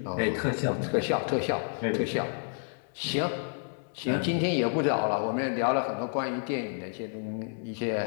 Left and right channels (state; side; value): silent; right; 58 dB below the other